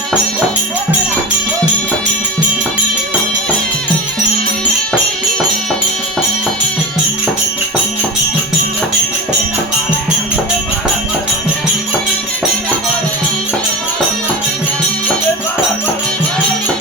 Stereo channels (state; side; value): normal; both; correlation 0.26